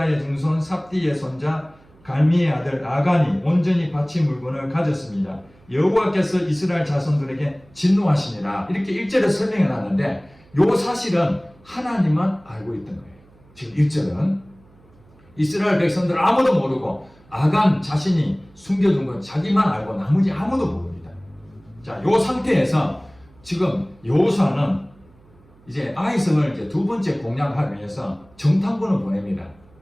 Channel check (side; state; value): right; noise; hum, 28 dB below the sound